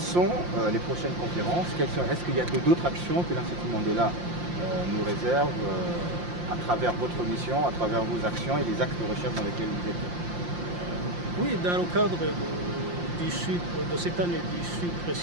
les prochaines conférences? Est-ce qu'il y a d'autres actions que l'Institut Mandela nous réserve à travers votre mission, à travers vos actions et les axes de recherche dans lesquels vous êtes? Oui, dans le cadre de cette année du sucre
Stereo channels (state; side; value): late; left; 5.7 ms